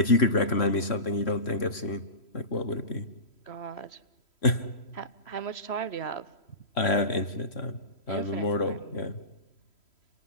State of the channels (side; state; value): right; late; 3.1 ms